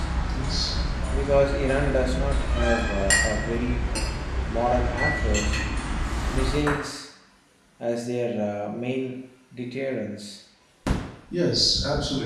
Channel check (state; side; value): identical; both; correlation 1.00